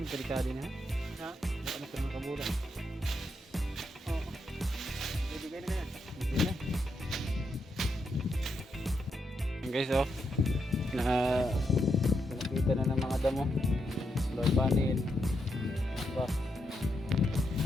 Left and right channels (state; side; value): normal; both; correlation 0.82